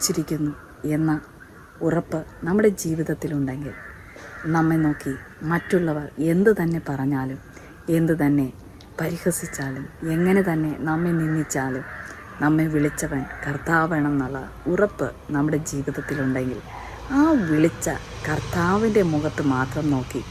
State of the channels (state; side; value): identical; both; correlation 1.00